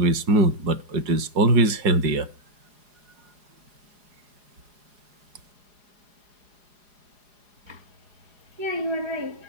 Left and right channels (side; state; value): left; late; 4.8 ms